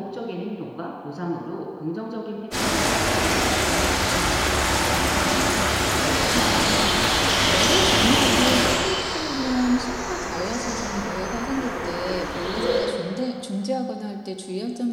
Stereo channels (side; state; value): both; identical; correlation 1.00